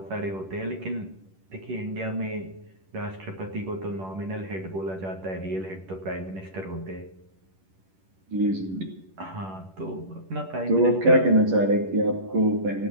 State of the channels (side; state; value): left; late; 10 ms